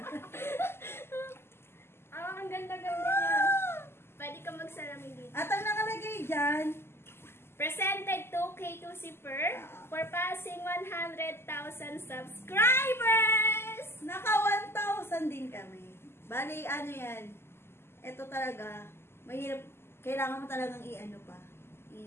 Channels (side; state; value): right; late; 0.12 ms